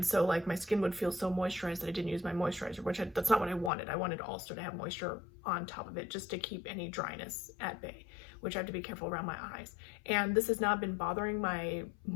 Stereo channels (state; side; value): drops out; right; at 3.7 s